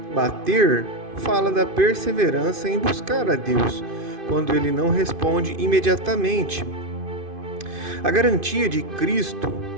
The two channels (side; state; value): left; late; 2.5 ms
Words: Bater fala da perseverança em buscar a Deus, quando Ele não responde imediatamente. A garantia de Cristo